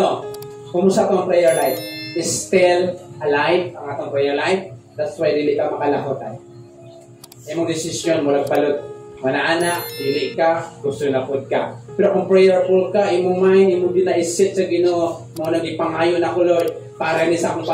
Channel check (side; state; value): both; identical; correlation 1.00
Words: Kumusta itong prayer life? Is still alive ang atong prayer life. That's why dili ka makalakotay. Imong desisyon mo nagbalot. Manaana, dili ka, gusto na pod ka. Pero kung prayerful ka, imong mind, imong dinaisit sa Ginoo, mo nagipangayo na ko Lord, para ni sa akong